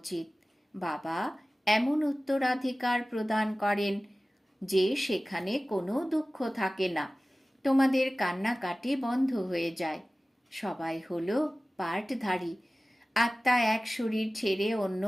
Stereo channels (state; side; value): normal; both; correlation 0.97